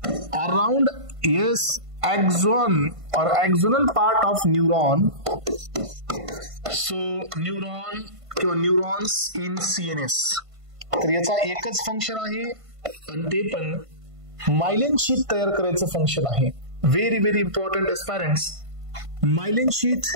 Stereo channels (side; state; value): left; late; 1.5 ms